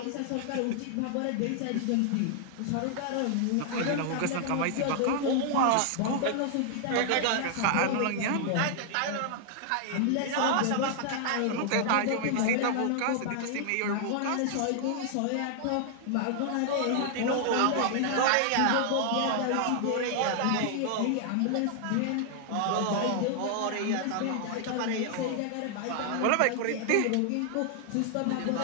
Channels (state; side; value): different; both; correlation 0.00